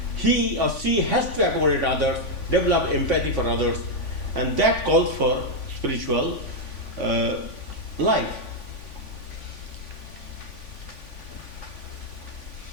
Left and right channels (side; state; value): right; late; 3.5 ms